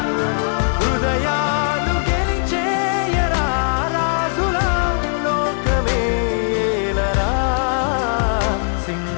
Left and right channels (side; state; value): right; silent; 66 dB below the other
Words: హృదయాలు గెలిచేయరా రాజుల లోకమే ఏలరా